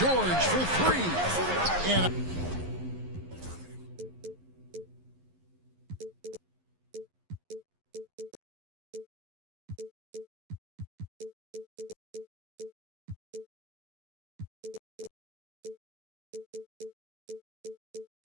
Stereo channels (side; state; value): left; late; 11 ms